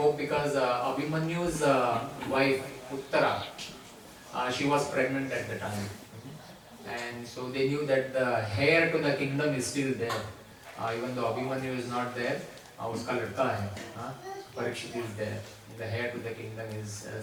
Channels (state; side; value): identical; both; correlation 1.00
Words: because Abhimanyu's wife, Uttara, she was pregnant at the time. And so they knew that the heir to the kingdom is still there. Even though Abhimanyu is not there, uska ladka hai, Parikshit is there. The heir to the kingdom is still